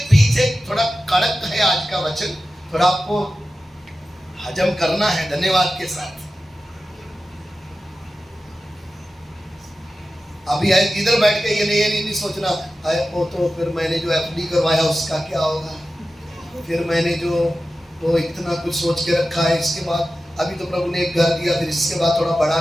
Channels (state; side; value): normal; both; correlation 0.94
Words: पीछे थोड़ा कड़क है आज का वचन, थोड़ा आपको हजम करना है धन्यवाद के साथ। अभी इधर बैठ के ये नहीं सोचना है वो तो फिर मैंने जो एफडी करवाया उसका क्या होगा, फिर मैंने जो वो इतना कुछ सोच के रखा है, इसके बाद अभी तो प्रभु ने एक घर दिया, फिर इसके बाद थोड़ा बड़ा